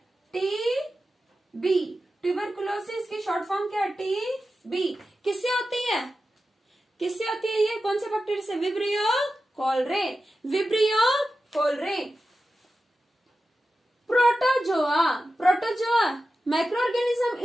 टीबी। ट्यूबरकुलोसिस की शॉर्ट फॉर्म क्या है, टीबी। किससे होती है, किससे होती है ये, कौन से बैक्टीरिया से, vibrio cholerae, vibrio cholerae. Protozoa, protozoa micro organism,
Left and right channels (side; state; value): both; normal; correlation 0.92